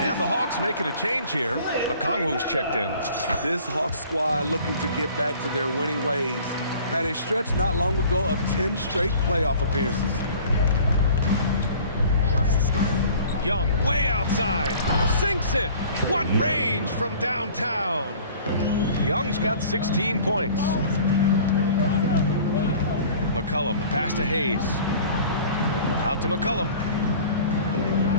And the Hawks making a change here. Okongwu's checked in. This Hawks squad looking to get back to their winning ways. Had a stretch not long ago of 10 straight playoff appearances. Young way outside. Sinks it. What range from downtown. Young's got 16 points. McCollum, pass to Hayes. Out to McCollum.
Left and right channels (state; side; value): inverted; both; correlation -0.47